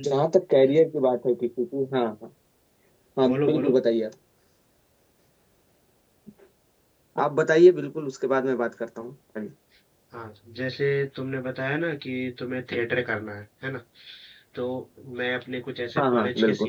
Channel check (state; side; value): identical; both; correlation 1.00